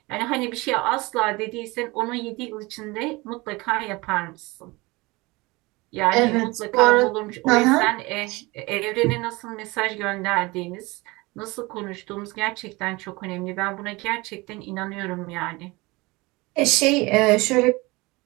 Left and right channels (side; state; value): left; quieter; 23.4 dB